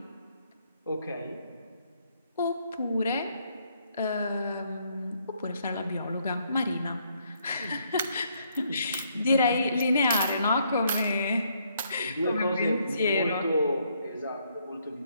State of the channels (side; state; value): both; inverted; correlation -0.71